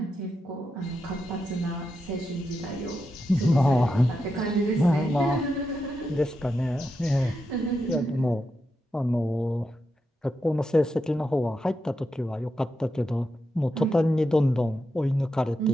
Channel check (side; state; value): both; normal; correlation 0.86